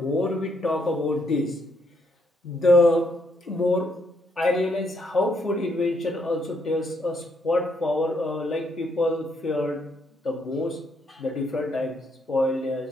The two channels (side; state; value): both; normal; correlation 0.74